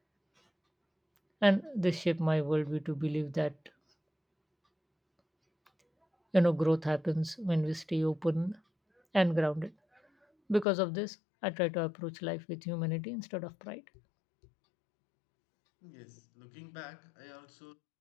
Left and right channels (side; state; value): right; drops out; at 10.7 s